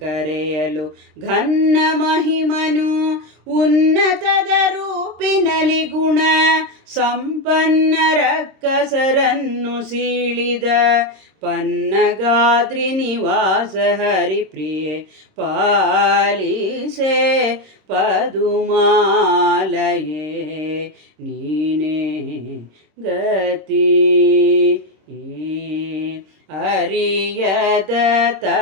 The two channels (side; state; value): left; late; 26 ms